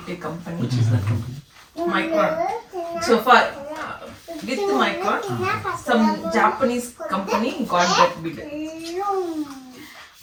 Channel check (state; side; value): identical; both; correlation 1.00